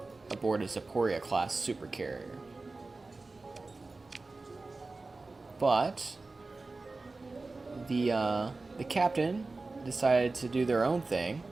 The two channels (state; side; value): quieter; left; 3.5 dB